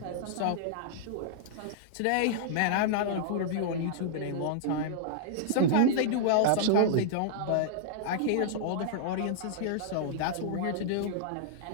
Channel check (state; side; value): different; both; correlation -0.02